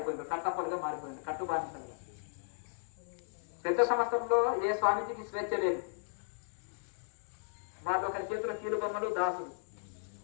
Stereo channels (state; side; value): silent; right; digital silence